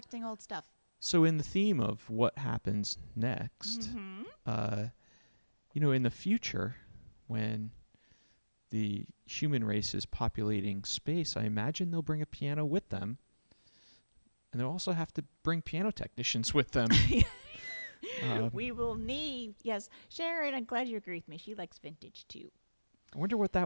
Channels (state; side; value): inverted; both; correlation -1.00